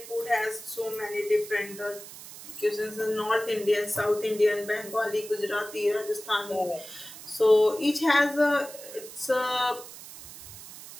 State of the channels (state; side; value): noise; right; hiss, 15 dB below the sound